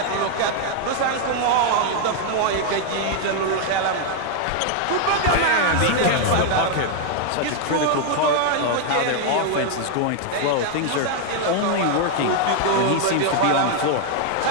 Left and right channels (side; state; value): both; different; correlation 0.00